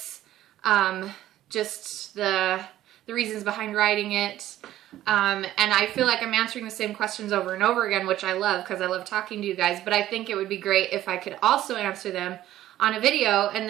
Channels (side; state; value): left; quieter; 13.6 dB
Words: just the reasons behind writing it, and I feel like I'm answering the same questions over and over again, which I love because I love talking to you guys, but I think it would be great if I could also answer them on a video, and